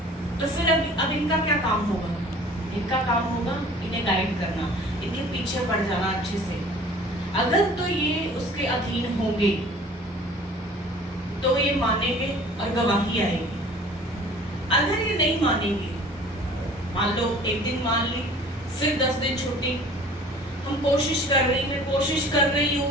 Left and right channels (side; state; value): both; normal; correlation 0.47